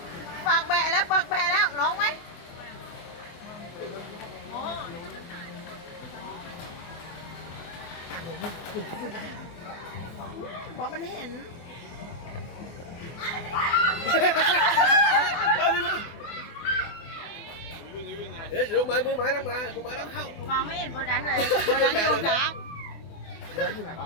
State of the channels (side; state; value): right; late; 24 ms